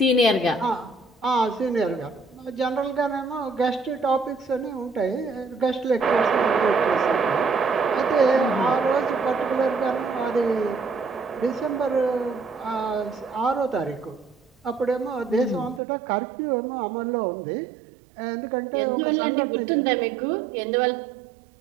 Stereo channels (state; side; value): drops out; left; at 15.8 s